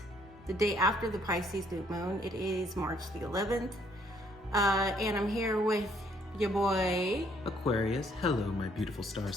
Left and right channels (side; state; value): both; normal; correlation 0.66